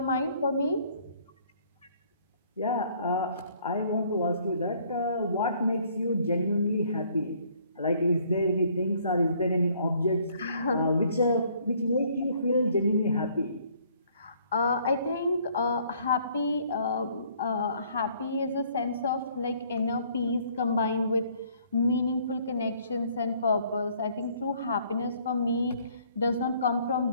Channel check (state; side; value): inverted; both; correlation -0.62